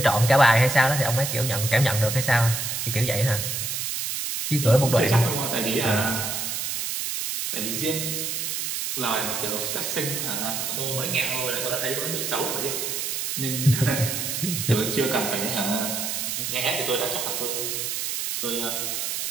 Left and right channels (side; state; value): right; noise; hiss, 2 dB below the sound